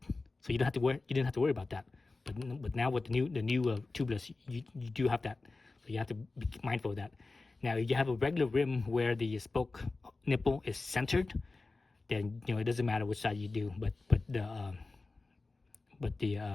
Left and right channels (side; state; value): right; quieter; 3.6 dB